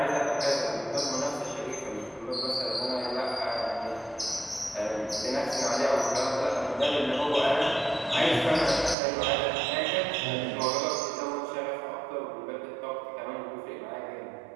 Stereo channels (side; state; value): left; drops out; at 9.0 s